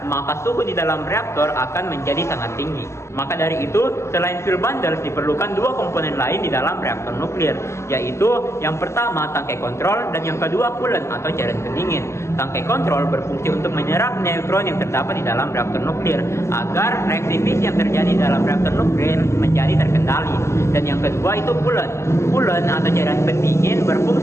maka suhu di dalam reaktor akan menjadi sangat tinggi. Maka dari itu, selain fuel bundle diperlukan 2 komponen lain di dalam reaktor nuklir, yaitu yang pertama tangkai kontrol dan yang kedua coolant atau cairan pendingin. Tangkai kontrol berfungsi untuk menyerap neutron yang terdapat di dalam reaktor nuklir agar reaksi fisi yang terjadi dalam reaktor nuklir menjadi terkendali. Dan yang kedua itu coolant. Coolant atau cairan pendingin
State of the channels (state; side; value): late; right; 0.13 ms